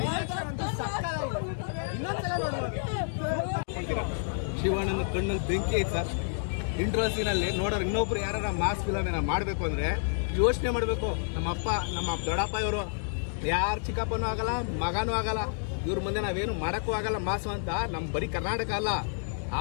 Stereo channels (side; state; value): right; silent; digital silence